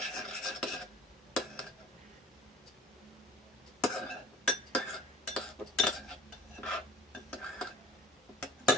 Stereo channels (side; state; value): both; normal; correlation 0.45